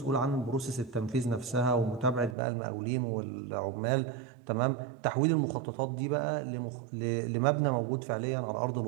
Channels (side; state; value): left; drops out; at 2.4 s